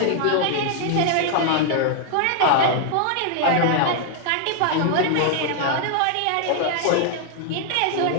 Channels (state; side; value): different; both; correlation 0.00